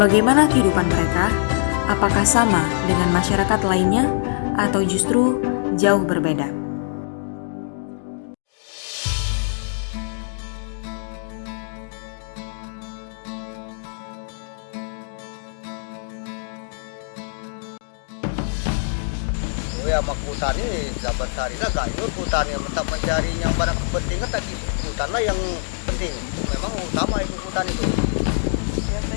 Bagaimana kehidupan mereka? Apakah sama dengan masyarakat lainnya atau justru jauh berbeda? Ya mak hutan ini dapat sehari lah gak ikut hutan yang tetap mencari yang barang kepentingan tadi hutan lah yang penting, memang utama itu hutan itu.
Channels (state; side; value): silent; right; digital silence